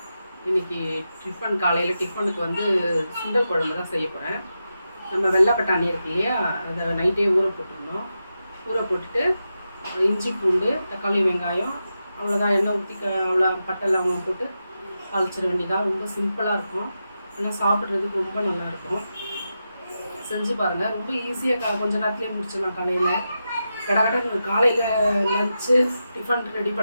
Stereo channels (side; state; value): both; inverted; correlation -0.89